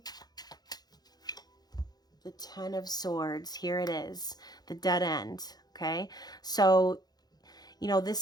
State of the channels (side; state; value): right; late; 0.19 ms